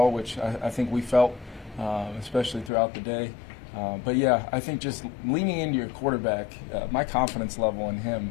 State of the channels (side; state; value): right; drops out; at 2.7 s